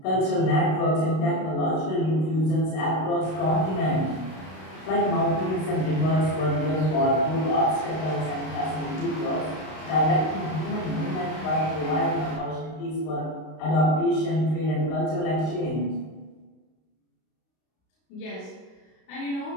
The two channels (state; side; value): late; right; 32 ms